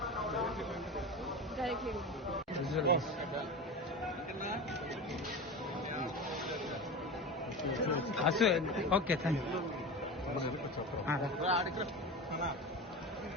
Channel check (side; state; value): both; normal; correlation 0.27